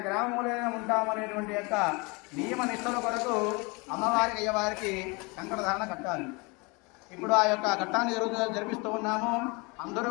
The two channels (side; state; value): right; quieter; 28.3 dB